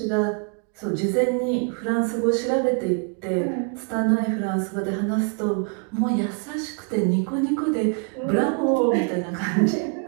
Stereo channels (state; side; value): quieter; left; 38.7 dB